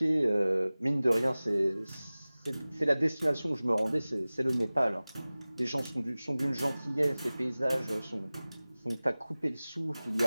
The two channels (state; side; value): inverted; both; correlation -0.98